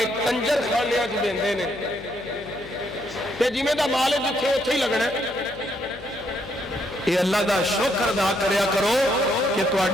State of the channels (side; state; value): left; noise; hum, 18 dB below the sound